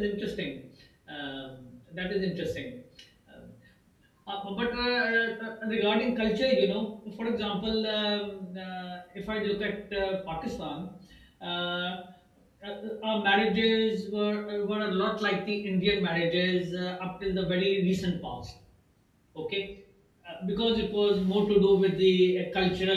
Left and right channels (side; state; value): both; identical; correlation 1.00